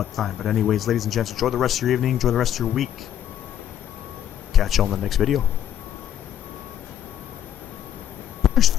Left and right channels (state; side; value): quieter; right; 10.6 dB